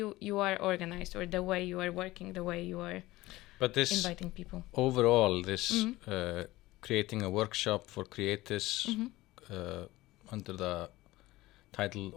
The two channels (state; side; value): quieter; right; 18.3 dB